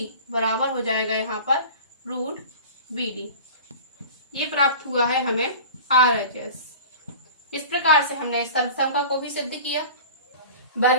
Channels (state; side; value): inverted; both; correlation -0.38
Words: बराबर हो जाएगा यहाँ पर रूट बी डी। ये प्राप्त हुआ है हमें आरएचएस। इस प्रकार से हमने इस सर्वसंख्या को भी सिद्ध किया।